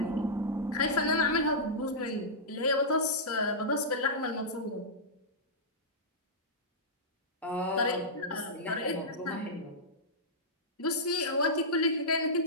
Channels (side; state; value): both; normal; correlation -0.13